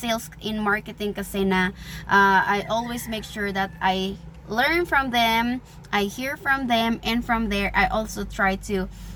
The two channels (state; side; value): identical; both; correlation 1.00